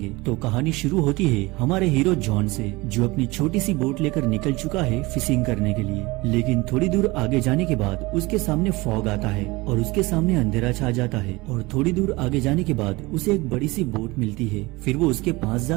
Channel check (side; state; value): left; quieter; 22.5 dB